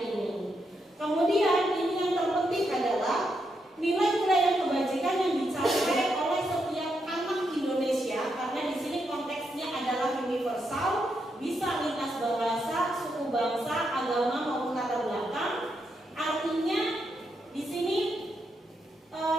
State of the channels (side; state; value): both; normal; correlation 0.82